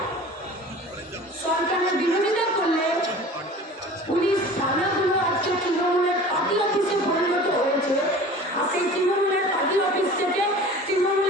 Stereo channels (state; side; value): normal; both; correlation 0.41